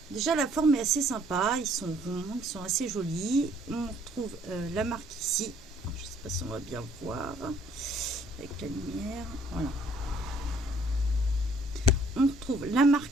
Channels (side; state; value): both; normal; correlation 0.61